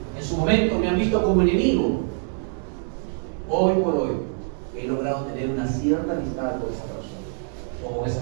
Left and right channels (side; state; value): left; silent; 62 dB below the other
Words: en su momento me han visto como enemigo. Hoy por hoy he logrado tener una cierta amistad con esa persona o con